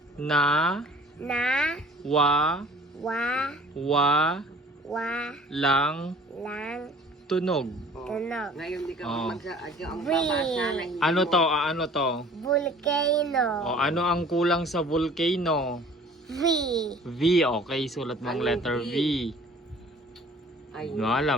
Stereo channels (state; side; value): normal; both; correlation 0.50